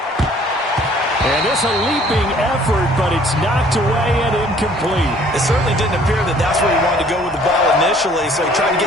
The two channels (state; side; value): normal; both; correlation 0.56